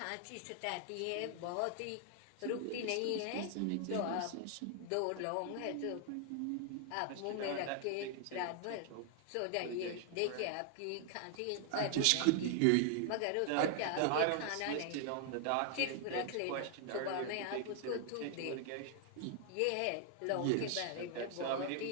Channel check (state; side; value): different; both; correlation 0.00